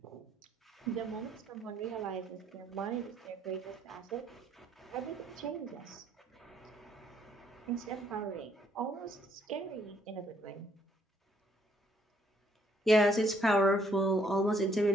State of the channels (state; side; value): normal; both; correlation 0.68